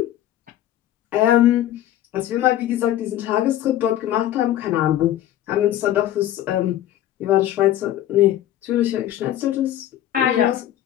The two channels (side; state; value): right; quieter; 12.6 dB